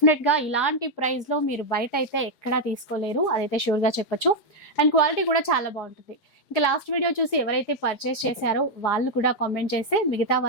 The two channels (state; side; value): late; right; 4.9 ms